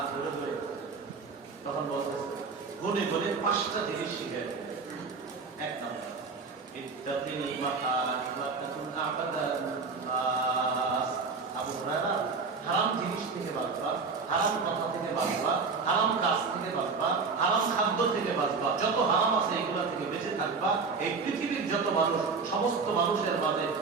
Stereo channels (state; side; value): quieter; left; 4.7 dB